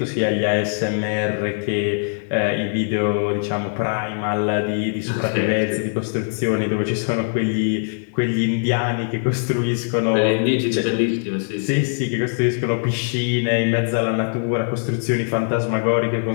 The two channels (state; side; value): silent; right; 65 dB below the other